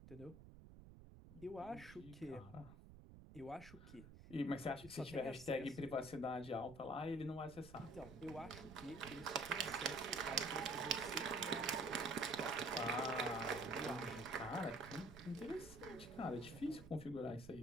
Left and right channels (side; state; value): right; noise; rumble, 16 dB below the sound